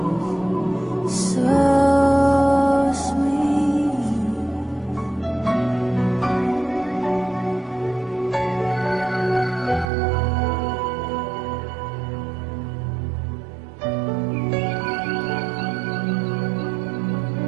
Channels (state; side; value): drops out; left; at 9.9 s